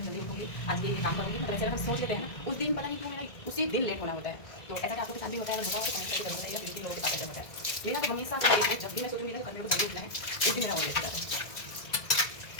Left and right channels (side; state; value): right; late; 1.7 ms